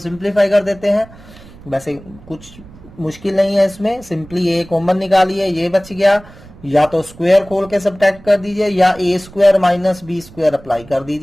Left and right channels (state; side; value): noise; right; rumble, 21 dB below the sound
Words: कर देते हैं. वैसे कुछ मुश्किल नहीं है इसमें, सिंपली a कॉमन निकालिए, ये बच गया. या तो स्क्वायर खोल के सब्ट्रैक्ट कर दीजिए, या a square minus B square apply कर